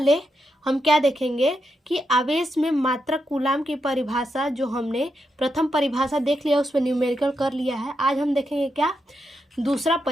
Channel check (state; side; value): normal; both; correlation 0.84